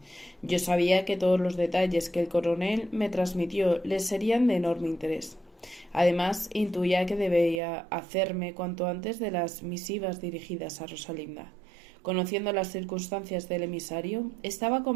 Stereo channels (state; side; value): drops out; left; at 7.6 s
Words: Yo sabía que todos los detalles que el coronel me transmitió le serían de enorme interés. Además, intuía que debía hacerme cuanto antes de las misivas dirigidas a Rosalinda. Conociendo las circunstancias del emisario, estaba